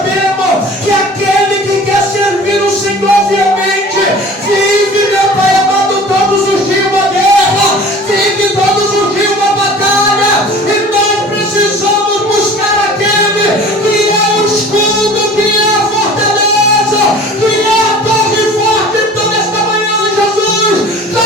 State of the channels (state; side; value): normal; both; correlation 0.43